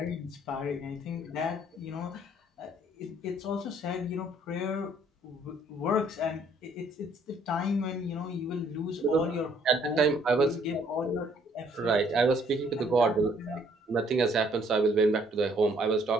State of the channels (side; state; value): both; normal; correlation 0.63